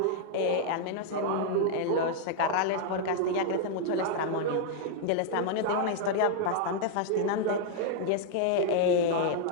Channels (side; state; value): both; different; correlation -0.01